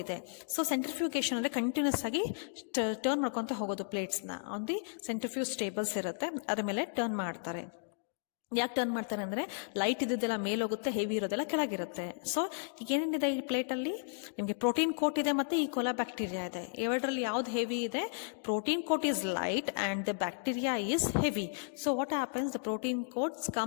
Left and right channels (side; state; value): right; silent; digital silence